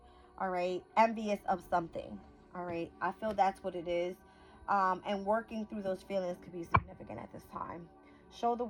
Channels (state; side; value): identical; both; correlation 1.00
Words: all right? Envious of something, all right? I feel that's what it is. And working through those feelings could be significant at this time. Show the